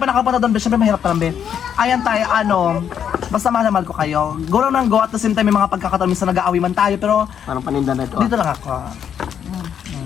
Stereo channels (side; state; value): right; quieter; 8.5 dB